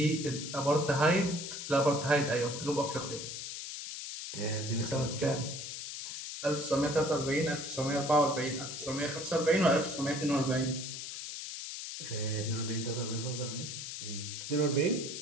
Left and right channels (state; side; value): noise; left; hiss, 7 dB below the sound